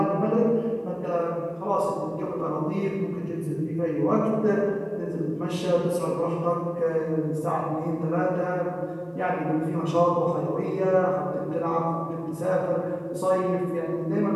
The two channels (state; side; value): identical; both; correlation 1.00